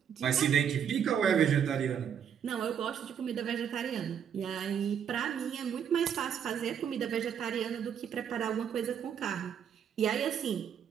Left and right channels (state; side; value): quieter; left; 8.3 dB